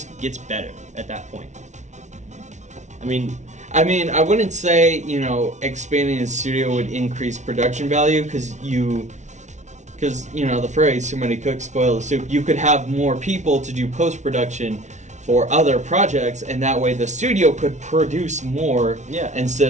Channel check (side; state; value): left; late; 0.34 ms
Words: gets better at that point. I mean, I wouldn't say, you know, expanding the studio would increase production value because you know, the phrase "too many cooks spoil the soup." You could have more people to do post-production for other projects, and that way the studio could produce more